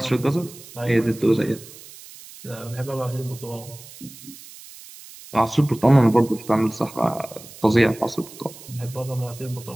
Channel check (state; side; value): noise; right; hiss, 18 dB below the sound